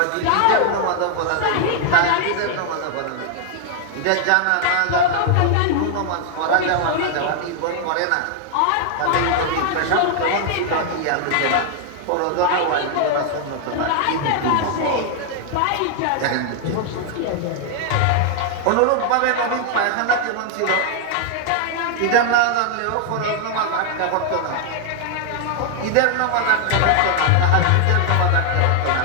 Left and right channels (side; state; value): both; different; correlation 0.00